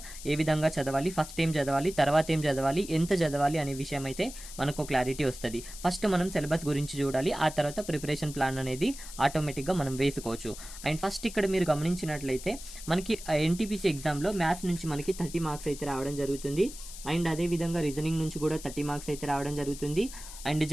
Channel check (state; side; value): noise; left; hiss, 13 dB below the sound